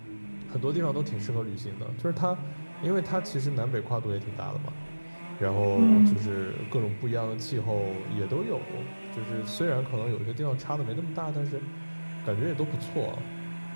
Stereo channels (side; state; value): both; inverted; correlation -1.00